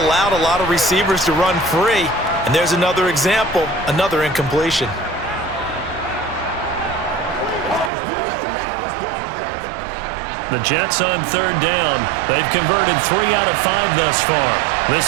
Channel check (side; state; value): left; drops out; at 7.9 s